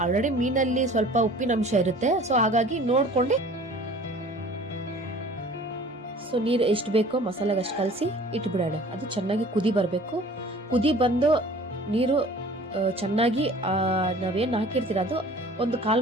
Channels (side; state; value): both; normal; correlation 0.47